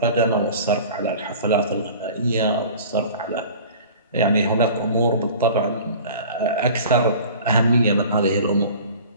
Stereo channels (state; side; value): inverted; both; correlation -0.43